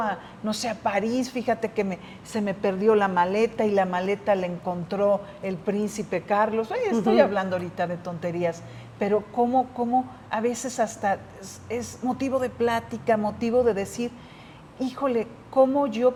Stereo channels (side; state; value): both; identical; correlation 1.00